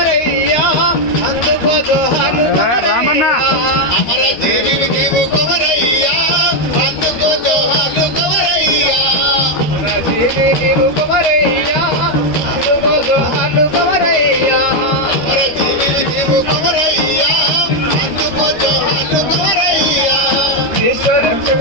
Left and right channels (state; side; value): late; right; 13 ms